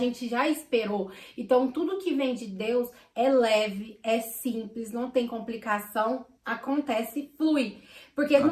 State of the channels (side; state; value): both; identical; correlation 1.00